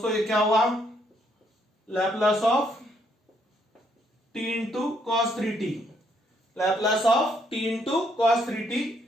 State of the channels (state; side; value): normal; both; correlation 0.72